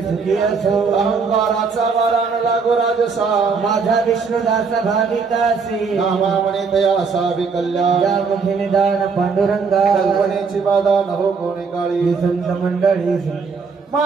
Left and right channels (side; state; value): left; quieter; 5.1 dB